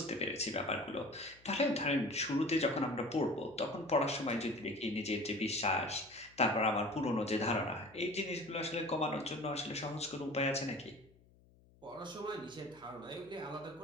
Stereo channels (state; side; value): noise; left; hum, 28 dB below the sound